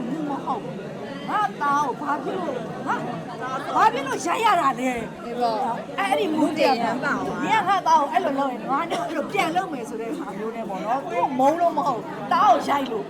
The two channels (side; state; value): both; identical; correlation 1.00